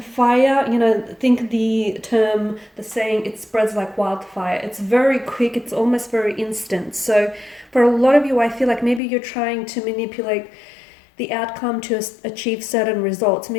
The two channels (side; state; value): right; drops out; at 9.0 s